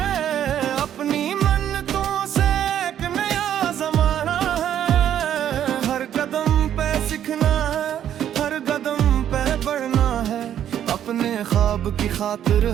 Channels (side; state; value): left; quieter; 10.3 dB